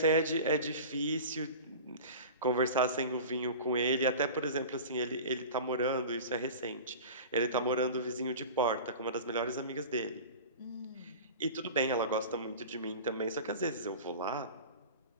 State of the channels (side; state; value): both; inverted; correlation -0.35